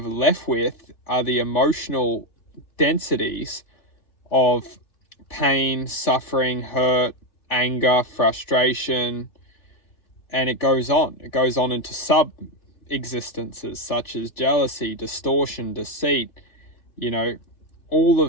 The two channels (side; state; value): right; late; 3.1 ms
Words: left with are the emotional densities of pain, suffering, hurt, anger, frustration, and it goes on. It goes on into sub-existences such as jealousy, distortion, deceit. All